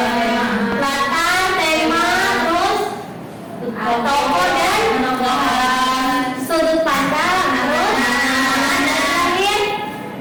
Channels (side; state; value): both; identical; correlation 1.00